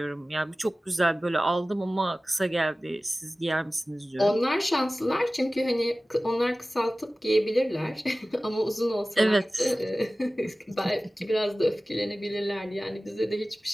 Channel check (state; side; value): normal; both; correlation 0.97